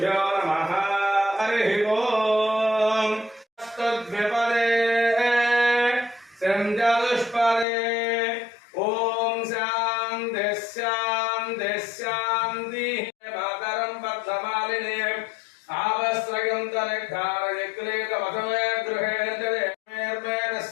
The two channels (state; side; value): drops out; right; at 7.7 s